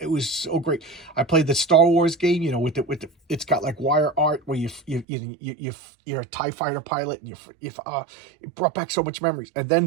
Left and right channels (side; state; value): left; drops out; at 5.1 s